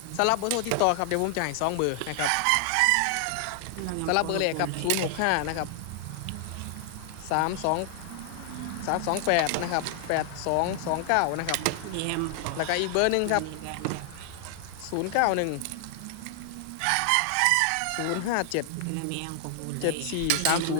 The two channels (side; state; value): both; different; correlation 0.00